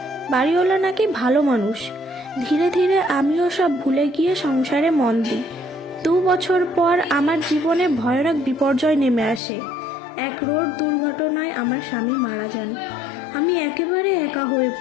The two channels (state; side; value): drops out; right; at 9.4 s